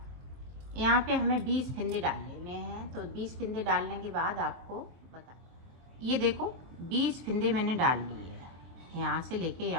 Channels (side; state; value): left; late; 23 ms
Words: यहाँ पे हमें 20 फिंदे डाल लेने हैं। तो 20 फिंदे डालने के बाद आपको बता, ये देखो 20 फिंदे मैंने डाल लिए हैं, यहाँ से लेके